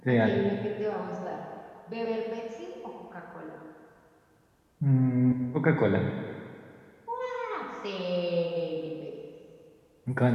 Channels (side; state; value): both; identical; correlation 1.00